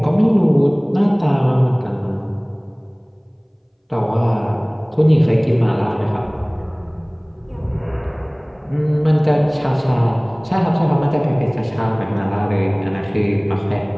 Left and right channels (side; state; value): both; identical; correlation 1.00